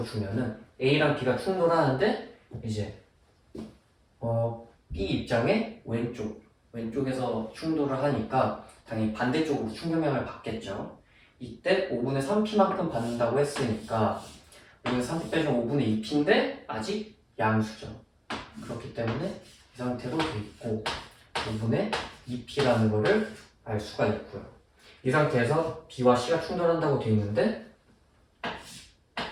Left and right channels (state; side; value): identical; both; correlation 1.00